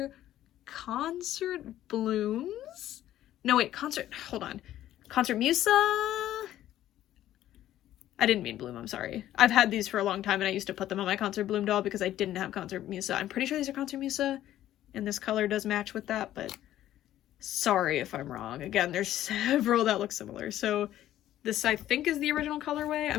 Concert Blooms. No, wait, hold on. Concert Musa? I didn't mean Bloom, I'm sorry. I've had these for a long time and I used to put them on my Concert Bloom doll because I didn't have Concert Musa. I'm pretty sure these are Concert Musa and this color does match with that, but sorry if I'm wrong. Again, there's several that look similar. So this I think is the original colorway. I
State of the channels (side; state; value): right; quieter; 12.9 dB